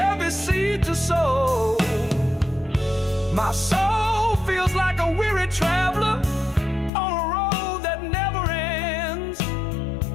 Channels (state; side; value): drops out; right; at 6.9 s